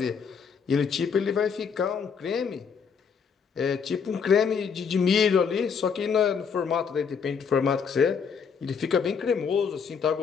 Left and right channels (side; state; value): right; quieter; 6.3 dB